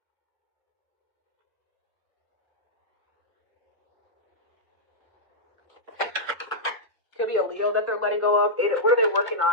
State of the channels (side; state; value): both; normal; correlation -0.09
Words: Could be a Leo that they're letting go of. What are they working